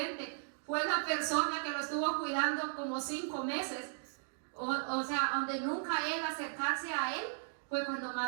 fue la persona que lo estuvo cuidando como 5 meses. O sea, donde nunca él acercarse a él, fue cuando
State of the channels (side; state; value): left; silent; digital silence